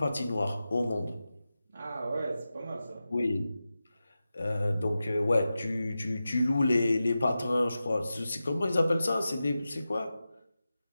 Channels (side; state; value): both; inverted; correlation -0.93